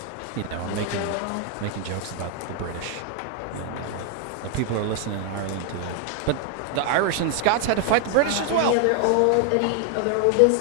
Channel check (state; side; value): different; both; correlation 0.00